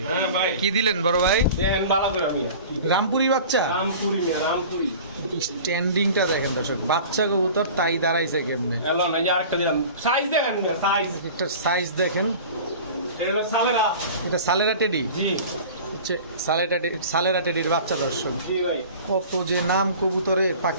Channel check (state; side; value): inverted; both; correlation -0.40